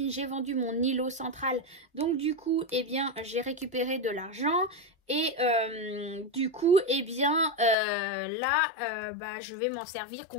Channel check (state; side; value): drops out; right; at 7.8 s